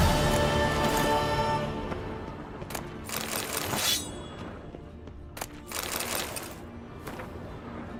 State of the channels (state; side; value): identical; both; correlation 1.00